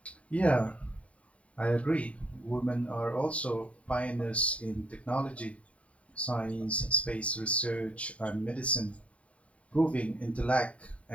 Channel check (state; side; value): late; right; 0.065 ms